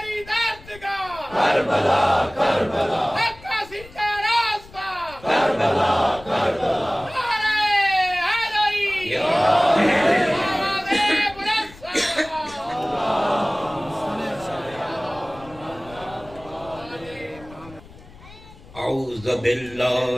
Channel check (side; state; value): left; noise; rumble, 21 dB below the sound